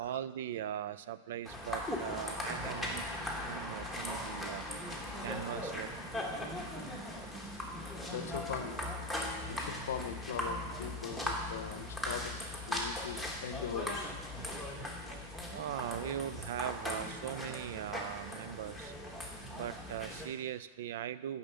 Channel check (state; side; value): normal; both; correlation 0.07